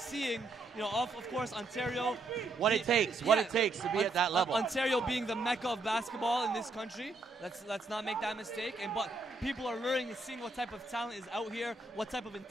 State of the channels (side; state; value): left; quieter; 3.3 dB